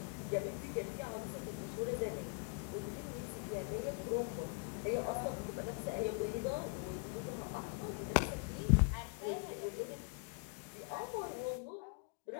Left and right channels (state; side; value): quieter; right; 36.2 dB